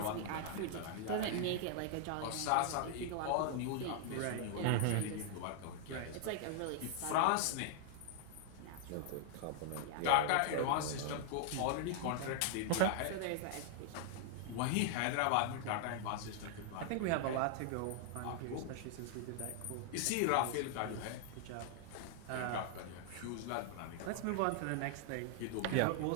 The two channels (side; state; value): both; different; correlation 0.00